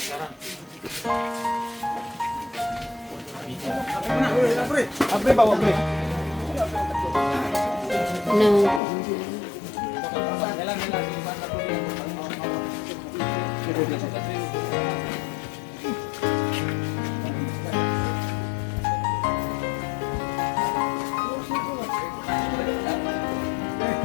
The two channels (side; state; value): right; drops out; at 8.8 s